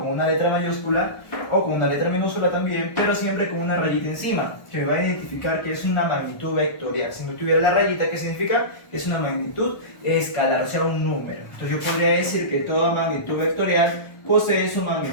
una letra mayúscula o con una letra minúscula también, pero siempre con una rayita encima, que me va a identificar que es una magnitud vectorial. Si no tuviera la rayita, ¿qué significa? Es una magnitud escalar, o sea, un número. Entonces yo podría decir que toda magnitud vectorial posee su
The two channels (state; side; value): late; right; 1.2 ms